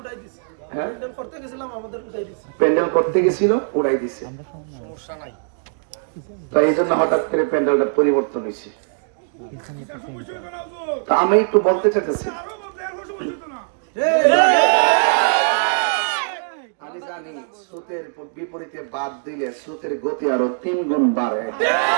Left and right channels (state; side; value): silent; left; digital silence